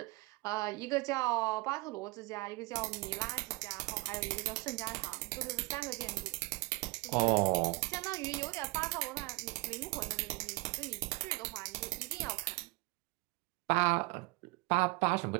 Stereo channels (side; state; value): left; quieter; 24.7 dB